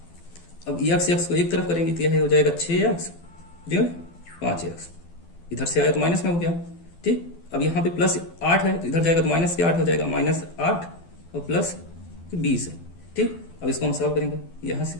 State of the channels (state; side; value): late; right; 12 ms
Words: अब यक्स यक्स को एक तरफ करेंगे तो यह हो जाएगा 6 यक्स 5 यक्स, इधर से आया तो माइनस में हो गया। ठीक, अब यहाँ पे प्लस 8 है तो इधर जाएगा तो माइनस के 8 हो जाएगा, -8 और प्लस 20 है। ठीक, अब इसको हम सॉल्व करेंगे। यहाँ से